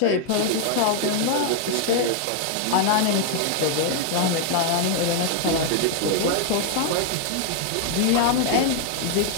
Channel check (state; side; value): different; both; correlation 0.00